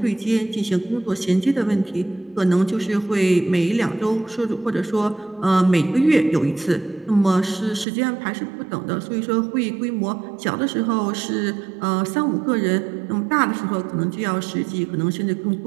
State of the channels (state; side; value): drops out; left; at 7.9 s